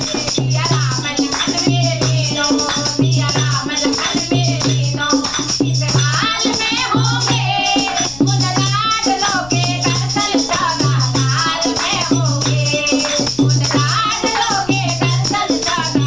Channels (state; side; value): noise; left; rumble, 18 dB below the sound